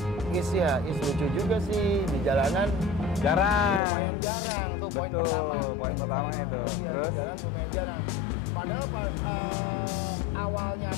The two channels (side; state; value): right; drops out; at 3.8 s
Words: Is lucu juga sih di jalanan. Lumayan jarang tuh poin pertama. Poin pertama itu. Oh iya, di jalan lumayan jarang. Padahal awalnya